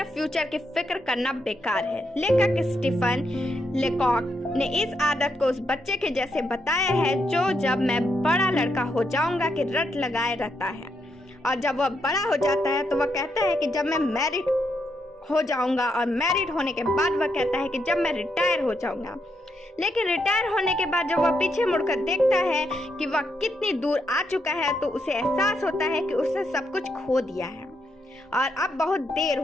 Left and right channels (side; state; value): both; normal; correlation 0.79